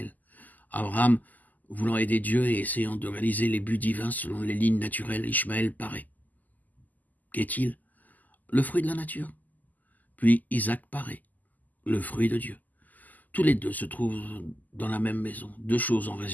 Abraham, voulant aider Dieu et essayant de réaliser les buts divins selon les lignes naturelles, Ishmaël paraît. Qu'est-il? Le fruit de la nature. Puis Isaac paraît, le fruit de Dieu. Tous les deux se trouvent dans la même maison. Deux choses en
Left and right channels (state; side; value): late; right; 0.082 ms